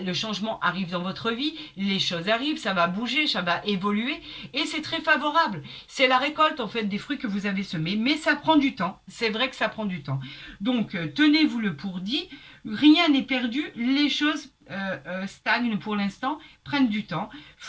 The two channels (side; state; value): both; identical; correlation 1.00